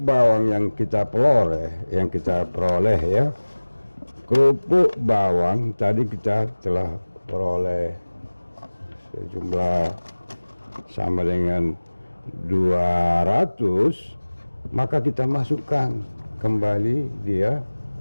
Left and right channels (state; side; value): inverted; both; correlation -1.00